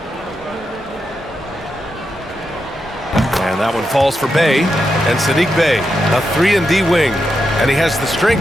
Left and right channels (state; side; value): normal; both; correlation 0.86